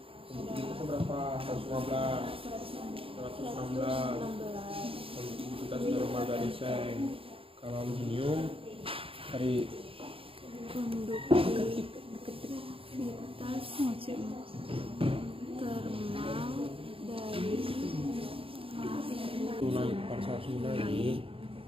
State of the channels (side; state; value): left; late; 0.27 ms